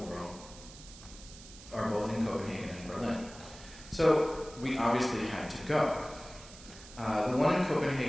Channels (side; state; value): right; noise; hiss, 17 dB below the sound